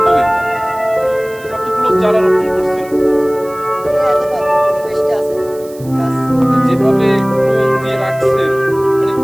কতগুলো চারা রোপণ করছেন। যেভাবে টোল দিয়ে রাখছেন, মানে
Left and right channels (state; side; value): noise; right; hiss, 22 dB below the sound